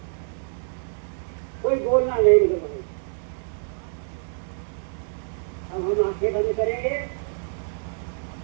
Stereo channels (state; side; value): silent; left; digital silence